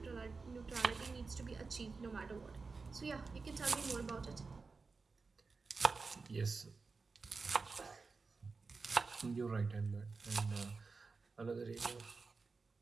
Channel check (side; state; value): left; quieter; 4.3 dB